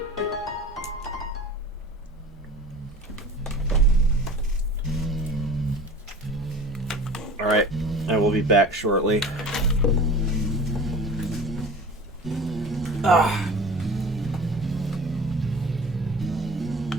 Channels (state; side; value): normal; both; correlation 0.39